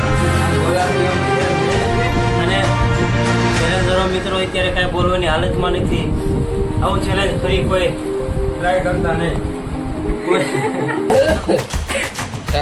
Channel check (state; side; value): identical; both; correlation 1.00